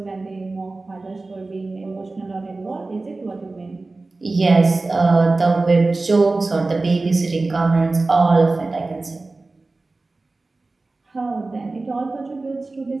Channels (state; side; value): quieter; left; 3.4 dB